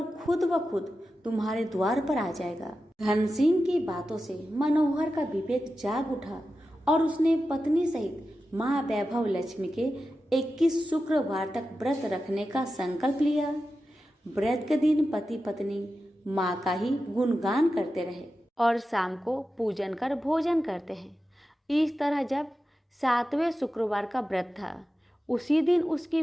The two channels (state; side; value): normal; both; correlation 0.92